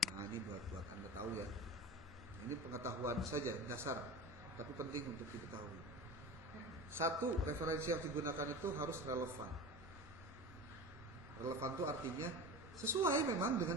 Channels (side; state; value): both; normal; correlation 0.32